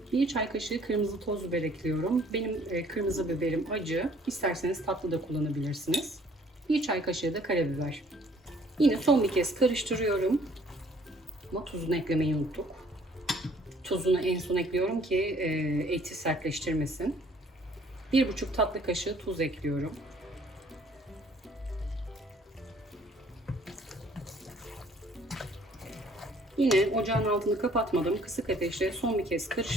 1 çay kaşığı kırmızı toz biber ekliyorum. Benim kırmızı biberim acı. İsterseniz tatlı da kullanabilirsiniz. 1 çay kaşığı da karabiber. Yine son bir kez karıştırıyorum. Ama tuzunu eklemeyi unuttuk. Tuzunu en son ekliyorum ki eti sertleştirmesin. 1,5 tatlı kaşığı tuz ekliyorum. Yine ocağın altını kapatmadım. Kısık ateşte son bir kez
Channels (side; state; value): both; normal; correlation 0.59